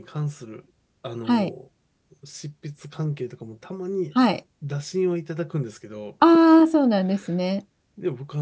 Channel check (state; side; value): identical; both; correlation 1.00